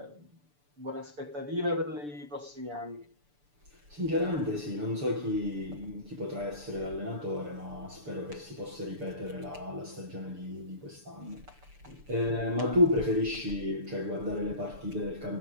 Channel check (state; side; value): late; left; 6.8 ms